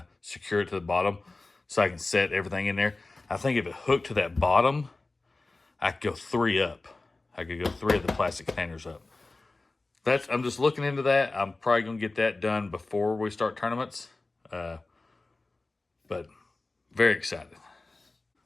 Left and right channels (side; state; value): right; quieter; 3.3 dB